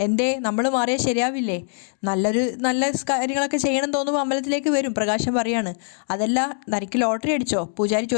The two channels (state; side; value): silent; right; 59 dB below the other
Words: എന്തേ നമ്മൾ മാറിയാൽ ശരിയാവില്ലേ? നല്ല കാര്യങ്ങളൊക്കെ ചെയ്യണം തോന്നുമ്പോൾ അമ്പലത്തിലേക്ക് വരും. പ്രകാശൻ പറയാണ്, അതല്ല തനിക്ക് ലോട്ടറി അടിച്ചോ? പൂജാരി